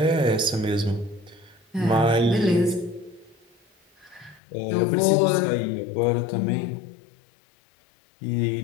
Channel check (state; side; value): drops out; right; at 4.4 s